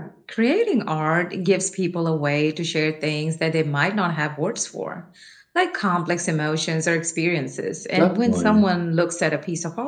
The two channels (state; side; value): identical; both; correlation 1.00